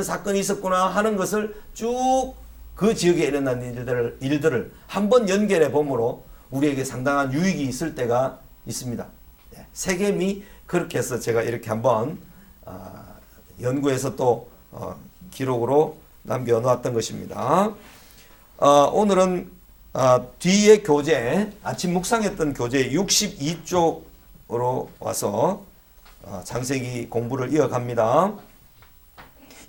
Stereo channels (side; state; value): both; identical; correlation 1.00